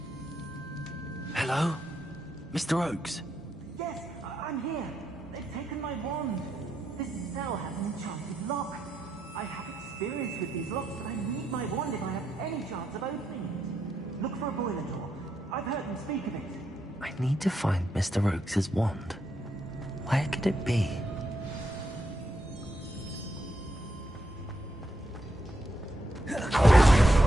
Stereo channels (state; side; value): normal; both; correlation 0.81